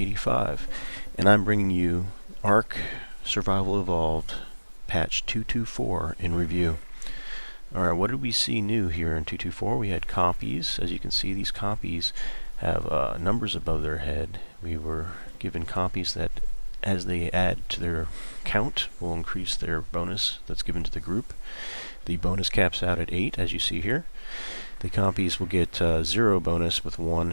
and I'm bringing you ARK Survival Evolved patch 224 in review. Alright, what did we see new here in 224? We had compies. As you can see, these compies have numbers above their head. We were given compies that, as they add to their count, will increase their bonus that's given to the group. The bonus caps out at 8, as you see here. The compies will get 0 bonus with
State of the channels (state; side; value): inverted; both; correlation -1.00